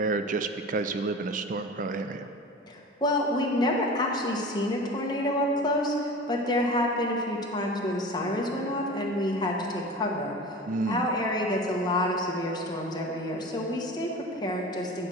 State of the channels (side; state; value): both; normal; correlation 0.35